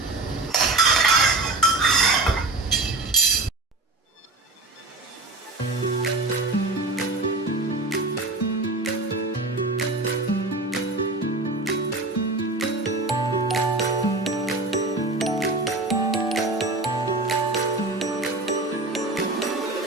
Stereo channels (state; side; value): quieter; left; 3.0 dB